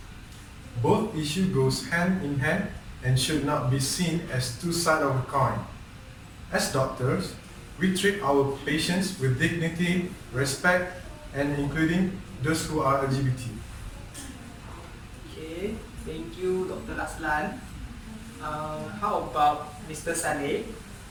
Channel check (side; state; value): both; identical; correlation 1.00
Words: Both issues goes hand in hand and should not be seen as two sides of a coin. As doctors, we treat our patients with dignity, respect, and including those who are LGBT. Adlan. How about Mr. Saleh?